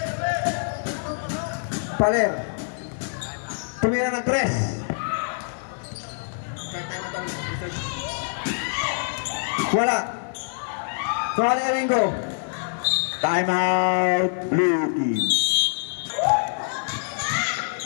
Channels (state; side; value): silent; right; 56 dB below the other